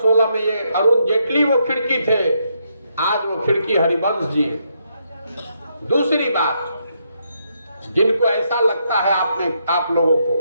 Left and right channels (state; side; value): inverted; both; correlation -0.77